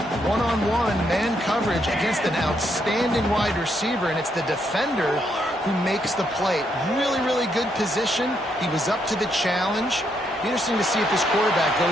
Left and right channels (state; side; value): normal; both; correlation 0.76